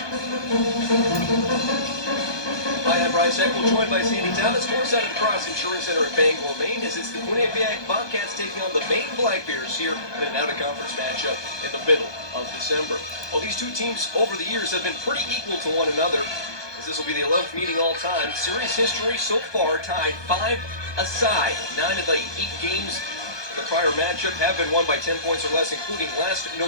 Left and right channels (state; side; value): late; right; 1.2 ms